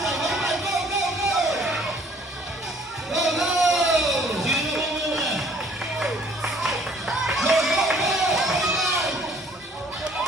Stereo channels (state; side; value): normal; both; correlation 0.58